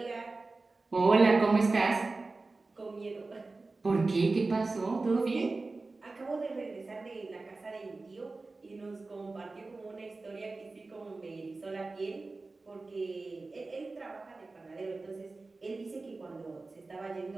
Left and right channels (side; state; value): left; quieter; 3.6 dB